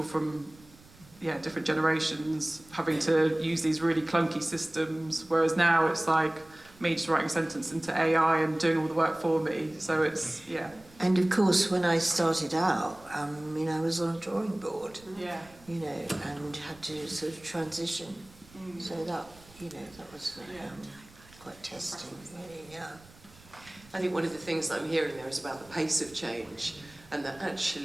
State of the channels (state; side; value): noise; right; rumble, 24 dB below the sound